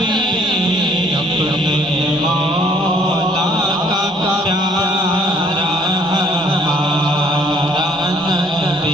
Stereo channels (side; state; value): both; normal; correlation 0.61